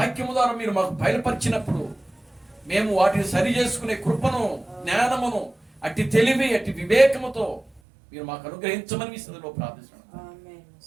ద్వారా మీరు మాకు బయలుపరిచినప్పుడు మేము వాటిని సరి చేసుకునే కృపను జ్ఞానమును అట్టి తెలివి అట్టి వివేకముతో మీరు మాకు అనుగ్రహించమని మీ స్థితిలో ప్రార్థిస్తున్నాను.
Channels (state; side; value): drops out; left; at 7.8 s